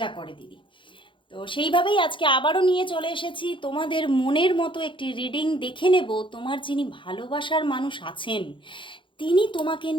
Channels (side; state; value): right; late; 0.24 ms